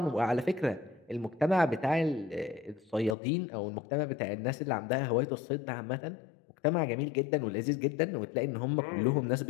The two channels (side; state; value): right; drops out; at 3.2 s